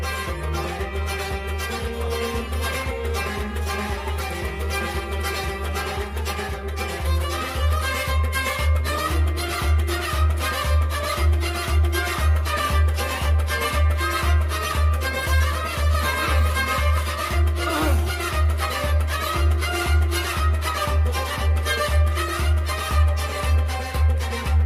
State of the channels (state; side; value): identical; both; correlation 1.00